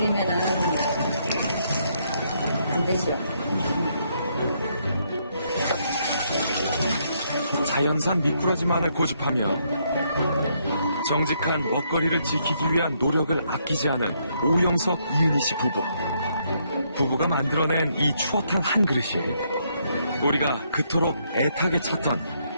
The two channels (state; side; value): inverted; both; correlation -0.74